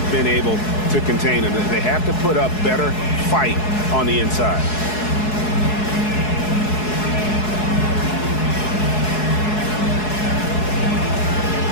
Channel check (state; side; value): late; right; 4.7 ms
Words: been able to contain him. They have to put up better fight on the inside.